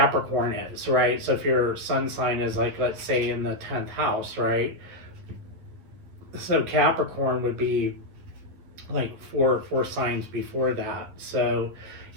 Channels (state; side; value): late; left; 11 ms